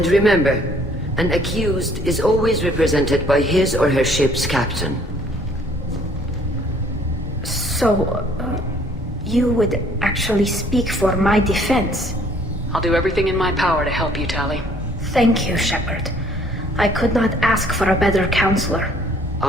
remember, an accused is always represented by his or her ship's captain. So, you would actually speak for my defense? I'll do everything in my power to help you, Tali. Thank you, Shepard. I could not ask for a better counselor.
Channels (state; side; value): normal; both; correlation 0.60